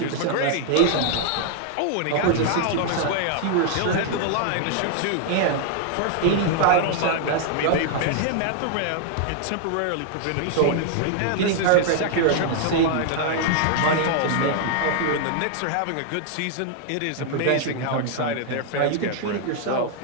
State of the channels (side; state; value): both; different; correlation 0.00